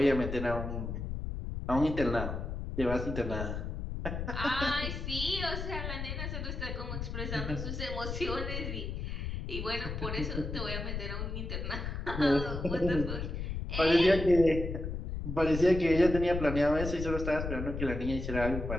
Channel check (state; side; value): noise; left; rumble, 4 dB below the sound